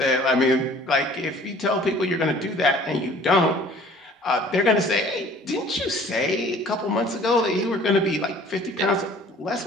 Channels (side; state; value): both; normal; correlation 0.51